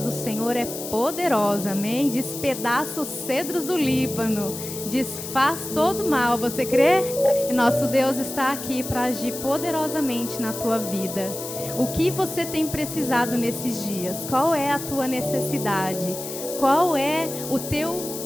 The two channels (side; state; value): left; noise; hiss, 9 dB below the sound